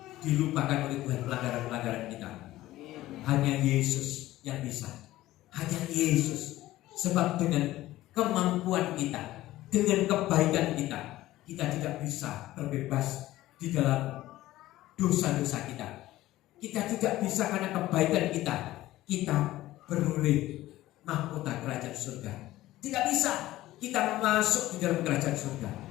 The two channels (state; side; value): quieter; right; 15.9 dB